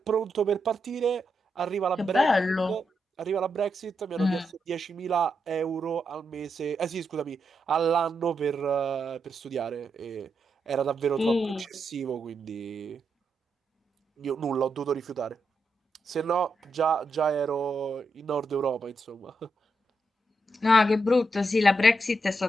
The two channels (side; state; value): both; normal; correlation 0.83